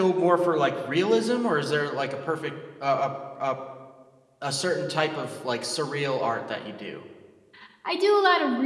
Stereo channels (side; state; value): both; identical; correlation 1.00